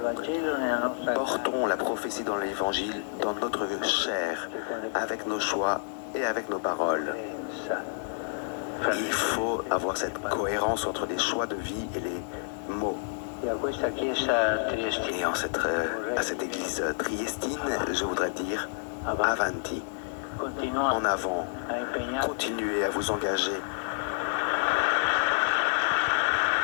Portons la prophétie dans l'Évangile, dans notre chair, avec nos choix et avec nos paroles. Il faut avoir cette cohérence entre les choix de vie et les mots. Et à cette église triestine, je voudrais dire avanti, en avant, continuez à vous engager.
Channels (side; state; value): right; silent; 59 dB below the other